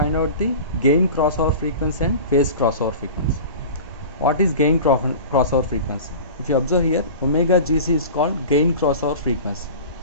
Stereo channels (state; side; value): inverted; both; correlation -0.35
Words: out the gain crossover frequency and phase crossover frequency. What is gain crossover frequency? If you observe here, omega GC is called gain crossover frequency.